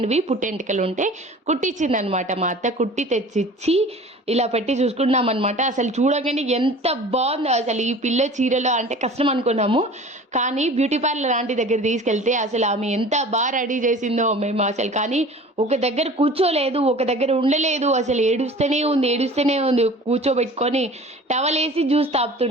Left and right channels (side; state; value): both; normal; correlation 0.43